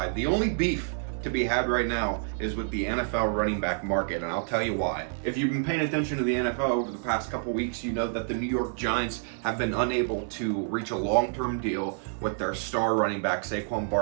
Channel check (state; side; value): silent; left; digital silence